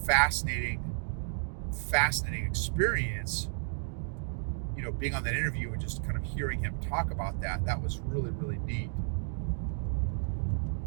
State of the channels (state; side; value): silent; left; digital silence